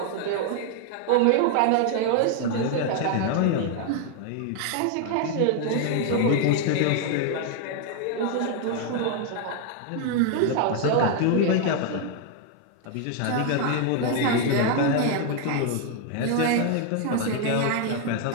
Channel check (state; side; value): different; both; correlation 0.00